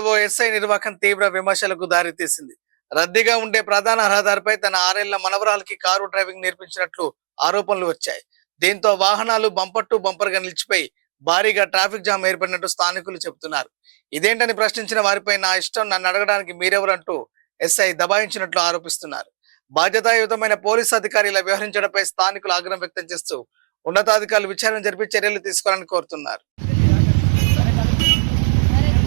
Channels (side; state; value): left; silent; 66 dB below the other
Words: ఓ ఎస్ఐ నిర్వాహకం తీవ్ర విమర్శలకు దారితీసింది. రద్దీగా ఉండే ప్రధాన రహదారిపై తన 6 ఏళ్ల మనవరాలకి కారు డ్రైవింగ్ నేర్పించినట్లు ఆరోపణలు వచ్చాయి. దీంతో వాహనాలు బంపర్ టు బంపర్ గా నిలిచిపోయి భారీగా ట్రాఫిక్ జామ్ ఏర్పడినట్టు స్థానికులు చెబుతున్నారు. ఇదేంటని ప్రశ్నించిన వారిపై నా ఇష్టం, నన్ను అడగడానికి మీరెవరంటూ ఎస్ఐ దబాయించినట్లు ఆరోపిస్తున్నారు. బాధ్యతాయుతమైన పోలీసు అధికారుల వ్యవహరించడంపై స్థానికులు ఆగ్రహం వ్యక్తం చేస్తూ ఉన్నతాధికారులు విచారణ జరిపి చర్యలు తీసుకోవాలని కోరుతున్నారు.